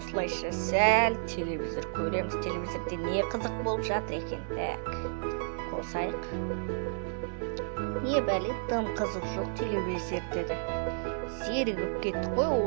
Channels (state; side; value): silent; left; digital silence